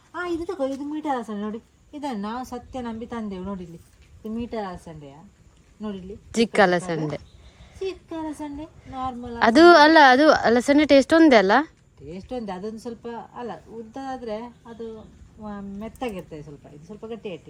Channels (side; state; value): both; identical; correlation 1.00